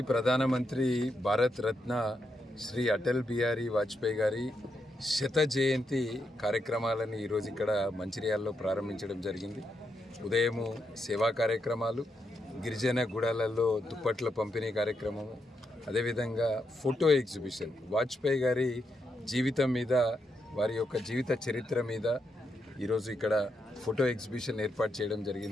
ప్రధానమంత్రి భారత రత్న శ్రీ అటల్ బిహారీ వాజ్పేయి గారి శత జయంతి కార్యక్రమాలను ఈరోజు ఇక్కడ మంచిర్యాలలో ప్రారంభించడం జరిగింది. ఉదయము సేవా కార్యక్రమాలు, గిరిజన గుడాలలో దుప్పట్ల పంపిణీ కార్యక్రమము, అదేవిధంగా ఫోటో ఎగ్జిబిషన్, వాజ్పేయి గారి జీవితం మీద, వారి యొక్క జీవిత చరిత్ర మీద ఈరోజు ఇక్కడ ఫోటో ఎగ్జిబిషన్ ఏర్పాటు చేయడం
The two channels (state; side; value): normal; both; correlation 0.82